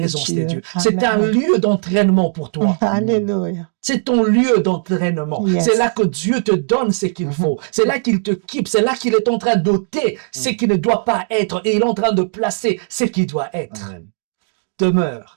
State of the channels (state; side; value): silent; left; digital silence